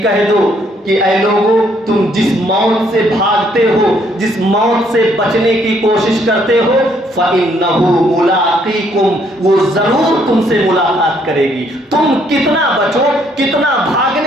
کہہ دو کہ اے لوگو تم جس موت سے بھاگتے ہو, جس موت سے بچنے کی کوشش کرتے ہو, فَإِنَّهُ مُلَاقِيكُمْ, وہ ضرور تم سے ملاقات کرے گی. تم کتنا بچو, کتنا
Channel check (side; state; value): both; normal; correlation 0.68